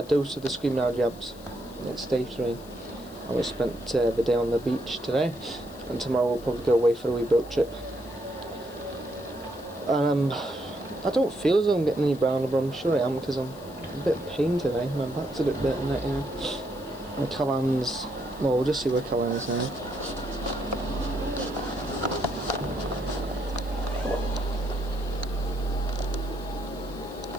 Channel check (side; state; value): left; noise; hiss, 22 dB below the sound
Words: dose of the Screaming Out Jabs. It's day 3, and we spent the day on the beach today, and tomorrow we'll probably go away for a wee boat trip. And I don't feel as though I'm getting any browner, but I'm sure I am, because I'm a bit in pain today. My back's a bit bent in it, you know. And Callan's, well, we'll just see where Callan is now.